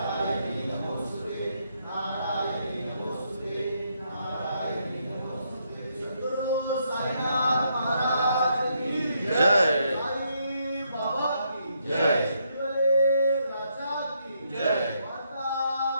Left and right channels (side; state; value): both; inverted; correlation -0.76